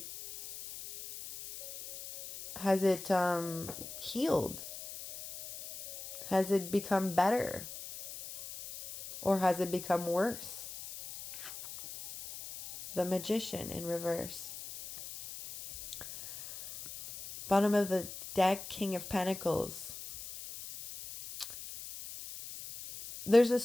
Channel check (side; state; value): left; noise; hiss, 11 dB below the sound